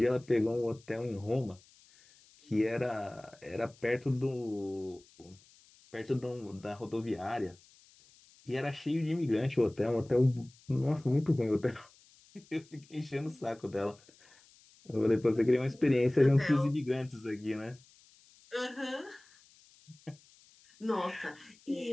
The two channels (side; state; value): left; noise; hiss, 27 dB below the sound